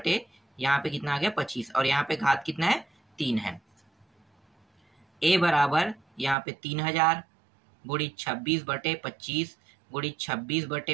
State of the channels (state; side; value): drops out; left; at 6.4 s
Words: यहाँ पे कितना आ गया, 25। और यहाँ पे घात कितना है, 3 है। ए बराबर यहाँ पे 3000 गुणित 26/25 गुणित